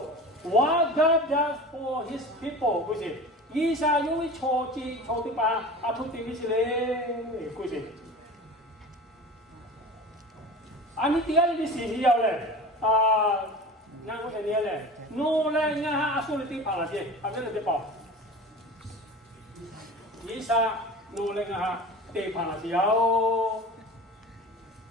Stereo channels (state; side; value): normal; both; correlation 0.35